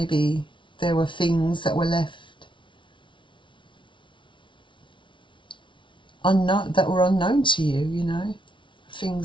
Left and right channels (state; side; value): late; right; 0.24 ms